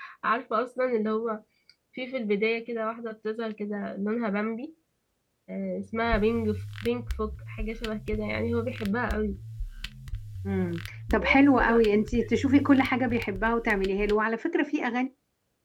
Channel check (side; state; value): both; identical; correlation 1.00